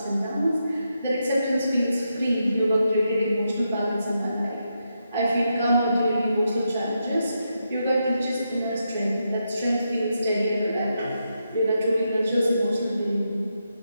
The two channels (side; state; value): both; inverted; correlation -0.83